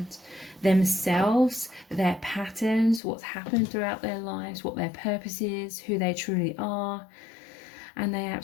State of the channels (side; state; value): right; drops out; at 3.0 s